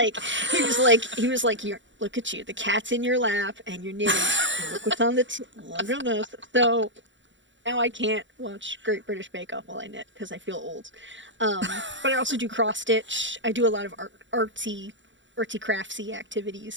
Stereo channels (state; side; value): late; left; 0.54 ms